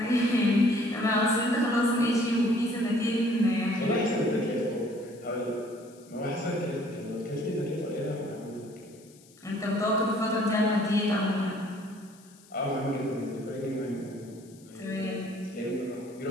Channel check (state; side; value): noise; left; hiss, 26 dB below the sound